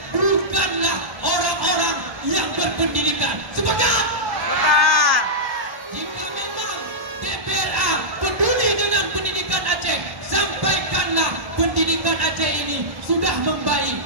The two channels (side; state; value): left; late; 1.1 ms